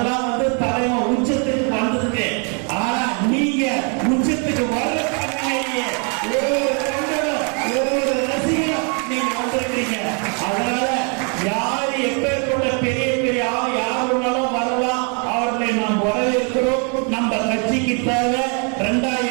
தலைவன் உச்சத்துக்கு வந்ததுக்கு. ஆனா நீங்க உச்சத்துக்கு வர ஒவ்வொரு தொண்டரும் ஒவ்வொரு ரசிகரும் நீங்க வந்திருக்கீங்க. அதனால யாரு எப்பேற்பட்ட பெரிய பெரிய யாருனாலும் வரலாம், அவர்களை நாம் வரவேற்கிறோம். நம்ம கட்சிக்கு தேவை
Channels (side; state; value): left; quieter; 37.7 dB